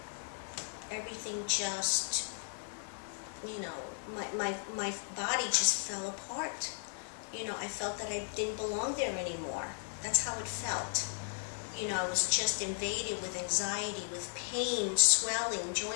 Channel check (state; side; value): silent; right; 54 dB below the other